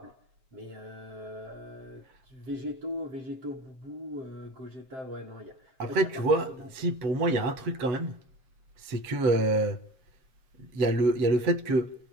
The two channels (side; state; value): left; late; 7.5 ms